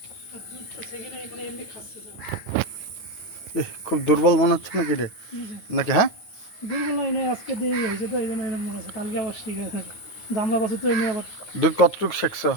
খুব দুর্বল মনে হচ্ছে নাকি রে? নাকি? হ্যাঁ, দুর্বল নয়, আজকে দেরি হয়েছে তো এই জন্য এরকম মনে হচ্ছে। কালকে আবার ঠিক আছে। জামলা বাছুর তো এমনি আবার দুধ কতটুক শেখছ?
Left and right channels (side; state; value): right; late; 9.4 ms